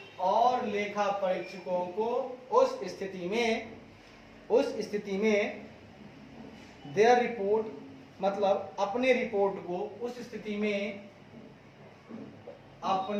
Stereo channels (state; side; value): identical; both; correlation 1.00